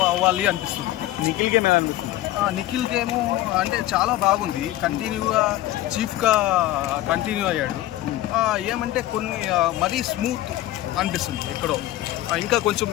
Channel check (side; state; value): right; quieter; 15.0 dB